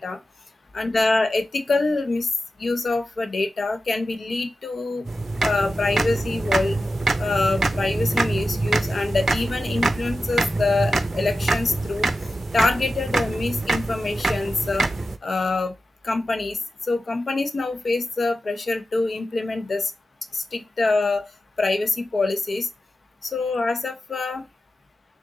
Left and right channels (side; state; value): both; normal; correlation 0.92